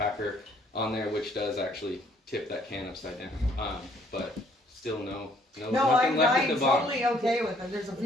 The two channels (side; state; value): both; normal; correlation 0.63